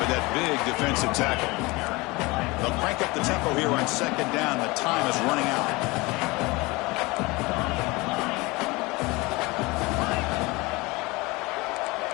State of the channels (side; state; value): right; quieter; 23.7 dB